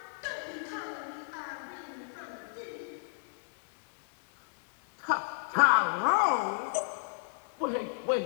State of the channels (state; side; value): silent; right; digital silence